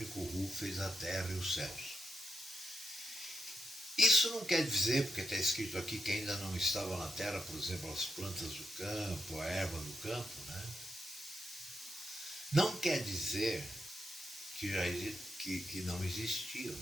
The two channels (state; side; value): normal; both; correlation 0.85